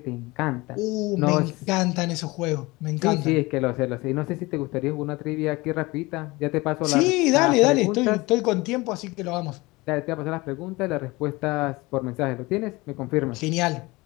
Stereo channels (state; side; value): quieter; right; 22.5 dB